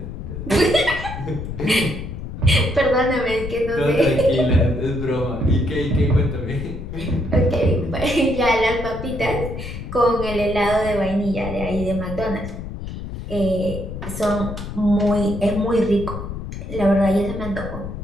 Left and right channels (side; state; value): left; noise; rumble, 8 dB below the sound